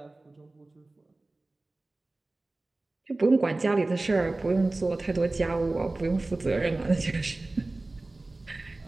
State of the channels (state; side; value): quieter; left; 3.0 dB